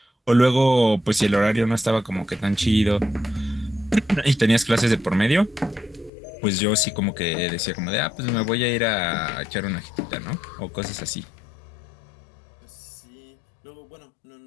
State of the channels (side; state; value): right; drops out; at 6.1 s